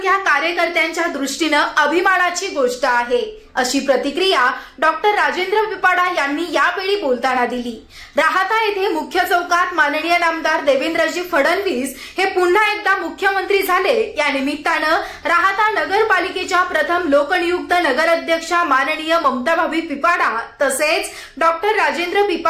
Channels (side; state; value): both; identical; correlation 1.00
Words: कार्यकर्त्यांच्या दृष्टीनं अभिमानाची गोष्ट आहे, अशी प्रतिक्रिया डॉक्टर राजेंद्र पिपाडा यांनी यावेळी बोलताना दिली। राहाता येथे मुख्य चौकात माननीय नामदार देवेंद्रजी फडणवीस हे पुन्हा एकदा मुख्यमंत्री झाले, या निमित्तानं राहाता नगरपालिकेच्या प्रथम लोकनियुक्त नगराध्यक्षा माननीय ममताभाभी पिपाडा तसेच डॉक्टर राजेंद्र